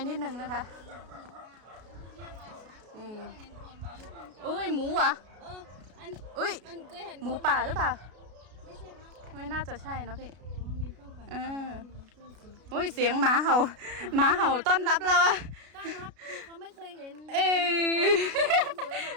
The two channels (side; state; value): left; late; 33 ms